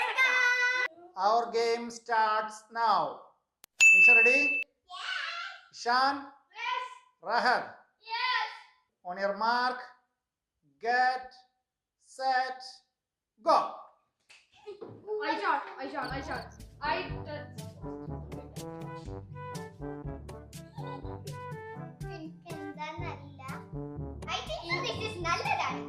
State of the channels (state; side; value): identical; both; correlation 1.00